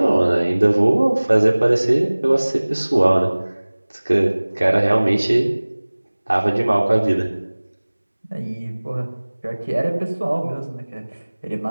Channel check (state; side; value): inverted; both; correlation -1.00